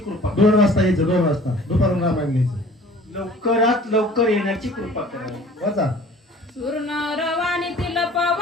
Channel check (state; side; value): normal; both; correlation 0.49